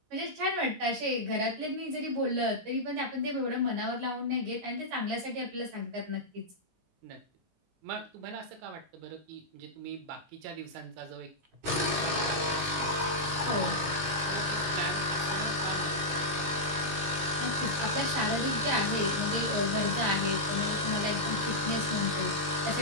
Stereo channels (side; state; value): left; late; 19 ms